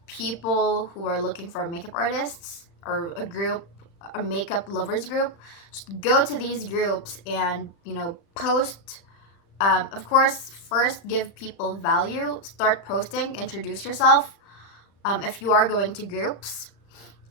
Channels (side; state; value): right; late; 35 ms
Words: people who are looking for makeup artists, or a makeup lovers group. Just go to these groups and post. Of course, first give people value. Start posting, introduce yourself. If you are going to groups,